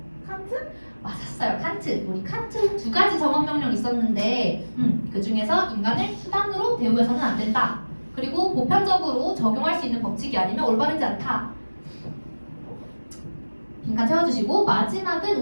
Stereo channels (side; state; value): both; inverted; correlation -1.00